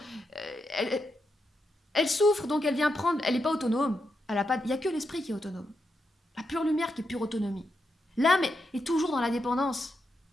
Elle souffre, donc elle vient prendre... Elle n'est pas autonome. Il n'y a que l'esprit qui est autonome. La pure lumière qui est pure autonomie. L'âme est toujours dans la dépendance.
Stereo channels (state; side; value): normal; both; correlation 0.84